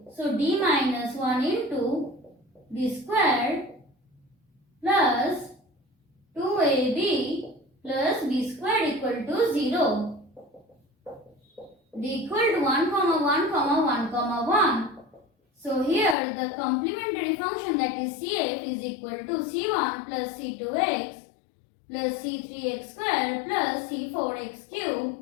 So d minus 1 into d squared plus 2ab plus b squared equal to 0. d equal to 1, 1, 1, 1. So here the complementary function, that is CF, is equal to C1 plus C2x plus C3x square plus C4x cube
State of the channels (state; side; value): drops out; right; at 16.2 s